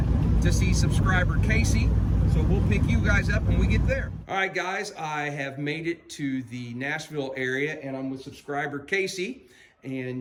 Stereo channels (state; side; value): identical; both; correlation 1.00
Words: to see subscriber Casey. So we'll pick you guys up when we get there. All right, guys, I have made it to the Nashville area, and I'm with subscriber Casey.